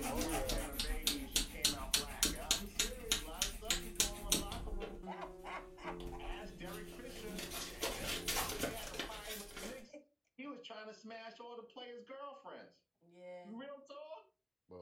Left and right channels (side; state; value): both; identical; correlation 1.00